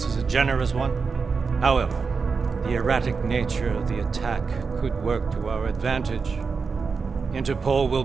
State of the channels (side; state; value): left; quieter; 5.0 dB